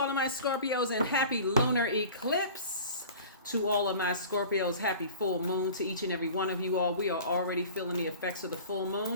of my Scorpios and happy lunar eclipse. To all of my Scorpios, happy full moon. To each and every one of you all, we are already feeling the effects of the full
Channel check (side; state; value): both; inverted; correlation -0.41